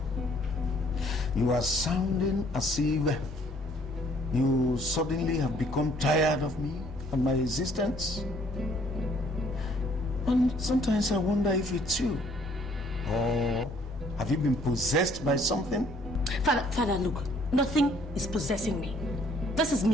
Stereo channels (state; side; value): normal; both; correlation 0.62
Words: you are sounding as if you suddenly have become tired of me and my existence. And sometimes I wonder if it's you. Or have you been possessed by something? Father, look, nothing is possessing me. This is